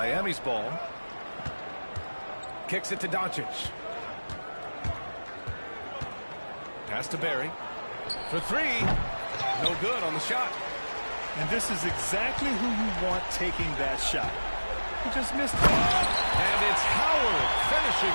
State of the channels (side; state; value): both; inverted; correlation -1.00